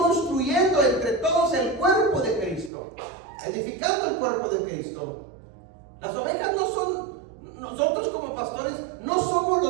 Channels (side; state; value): left; drops out; at 2.7 s